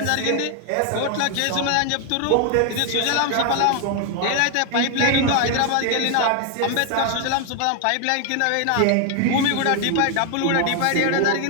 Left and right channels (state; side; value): different; both; correlation 0.00